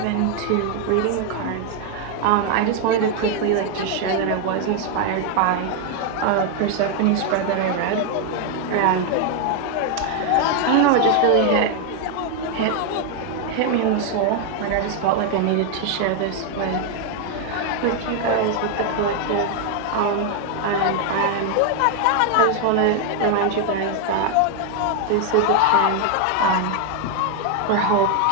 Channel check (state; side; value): different; both; correlation 0.00